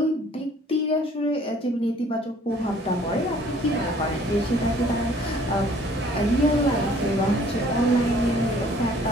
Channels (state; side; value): normal; both; correlation 0.56